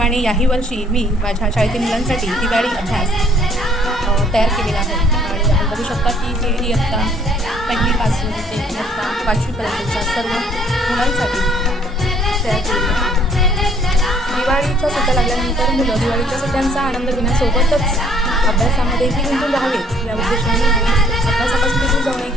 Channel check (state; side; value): normal; both; correlation 0.61